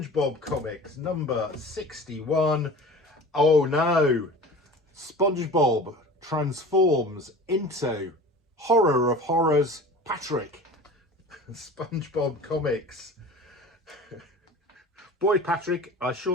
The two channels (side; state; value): both; normal; correlation 0.39